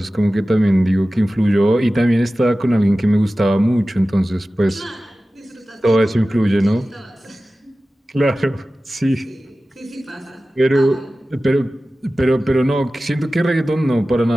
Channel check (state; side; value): normal; both; correlation 0.96